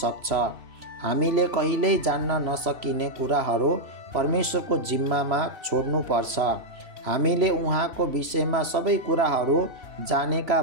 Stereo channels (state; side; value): late; left; 3.0 ms